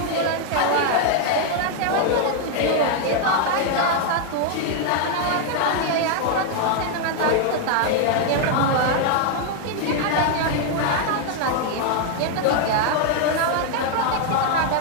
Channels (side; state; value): both; different; correlation 0.00